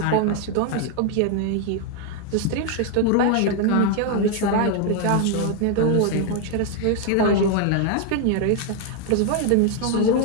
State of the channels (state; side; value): different; both; correlation 0.00